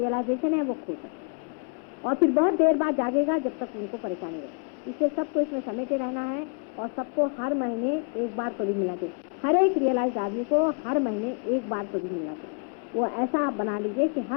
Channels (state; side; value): quieter; right; 38.0 dB